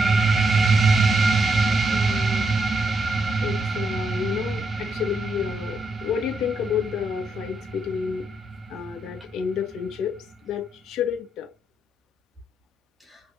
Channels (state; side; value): normal; both; correlation 0.79